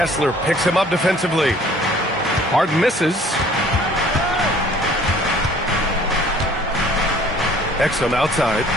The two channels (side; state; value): both; normal; correlation 0.54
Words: picks him up defensively. Harden misses. Exum outside.